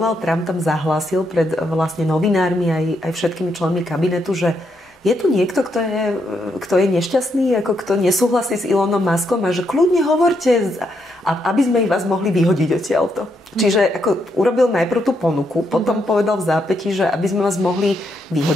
Trump tam zahlásil pred vlastne novinármi aj všetkými členmi kabinetu, že je tu niekto, kto je nešťastný, ako kto nesúhlasí s Elonom Muskom a že kľudne hovorte, aby sme vás mohli vyhodiť odtiaľto. Čiže ako urobil najprv tú ponuku, potom povedal v zápätí, že aby sme vás mohli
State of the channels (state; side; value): normal; both; correlation 0.78